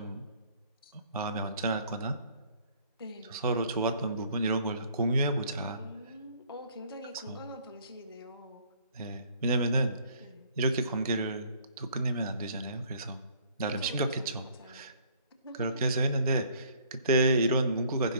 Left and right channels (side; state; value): both; inverted; correlation -0.59